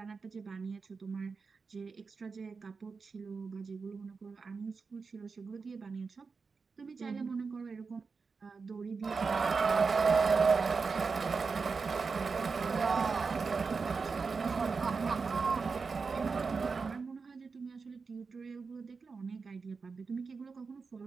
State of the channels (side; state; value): left; quieter; 4.8 dB